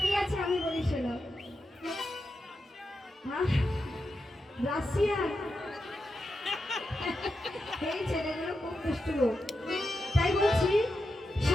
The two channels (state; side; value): normal; both; correlation 0.88